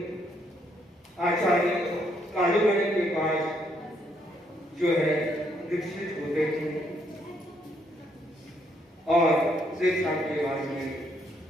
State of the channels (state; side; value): normal; both; correlation 0.72